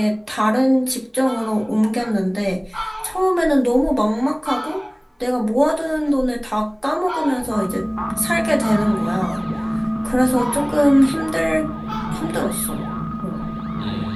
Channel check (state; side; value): identical; both; correlation 1.00